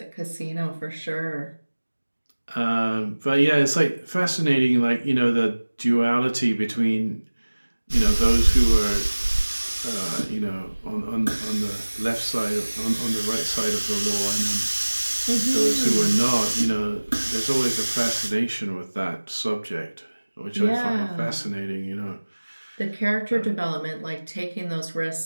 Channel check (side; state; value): both; inverted; correlation -1.00